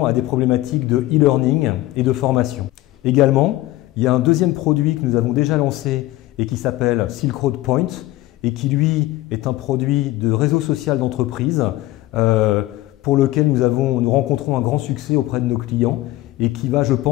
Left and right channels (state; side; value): quieter; right; 17.1 dB